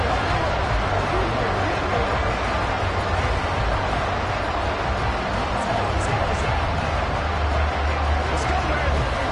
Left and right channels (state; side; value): identical; both; correlation 1.00